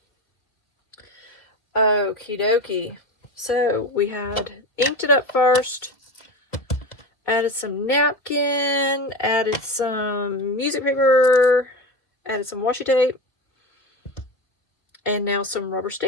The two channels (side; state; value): right; late; 2.3 ms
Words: Okie dokie. So we had inked it up first, added some napkin, added some music paper, added some washi tape, and now some rubber